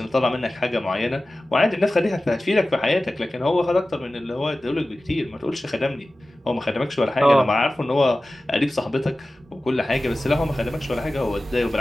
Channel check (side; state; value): both; normal; correlation 0.96